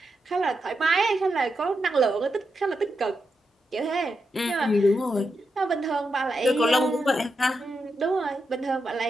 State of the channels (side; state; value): both; normal; correlation 0.86